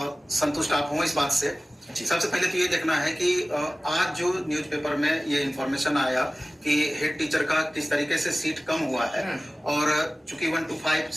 संतुष्ट आप हूँ इस बात से। सबसे पहले तो ये देखना है कि आज जो न्यूज़पेपर में ये इंफॉर्मेशन आया कि हेड टीचर का किस तरीके से सीट कम हुआ है, और चूंकि 1 to 5,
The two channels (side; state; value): both; normal; correlation 0.97